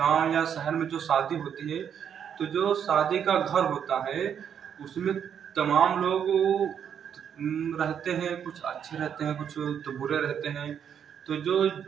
या शहर में जो शादी होती है, तो जो शादी का घर होता है उसमें तमाम लोग रहते हैं, कुछ अच्छे रहते हैं, कुछ तो बुरे रहते हैं। तो जो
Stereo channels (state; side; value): quieter; left; 8.3 dB